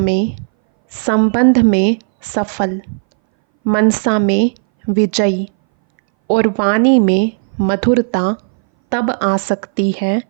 संबंध में सफल, मनसा में विजयी और वाणी में मधुरता तब आ सकती है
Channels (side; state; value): left; silent; 62 dB below the other